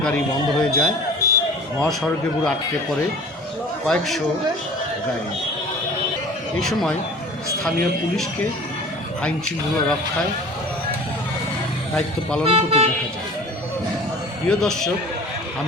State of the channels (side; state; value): both; normal; correlation 0.43